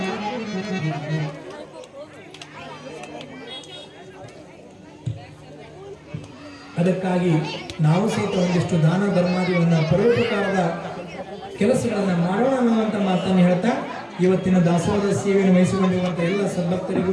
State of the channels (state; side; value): identical; both; correlation 1.00